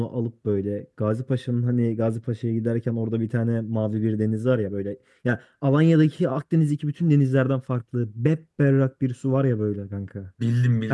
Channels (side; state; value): both; identical; correlation 1.00